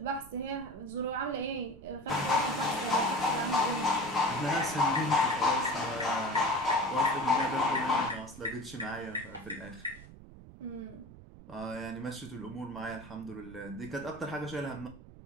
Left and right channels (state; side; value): noise; right; rumble, 18 dB below the sound